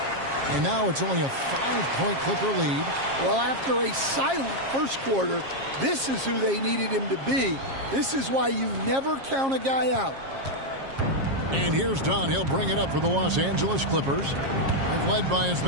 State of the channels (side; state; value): left; late; 7.4 ms